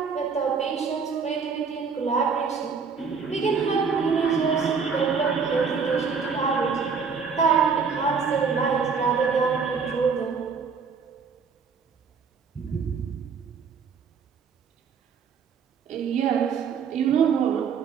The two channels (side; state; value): left; quieter; 5.7 dB